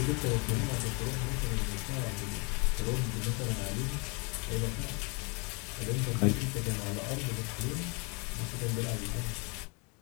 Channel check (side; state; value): right; quieter; 32.0 dB